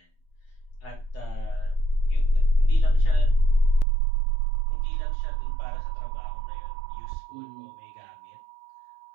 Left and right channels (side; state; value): left; drops out; at 3.9 s